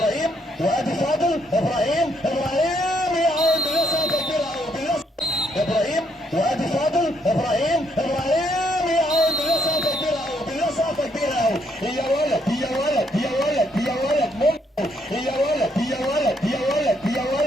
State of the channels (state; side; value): normal; both; correlation 0.73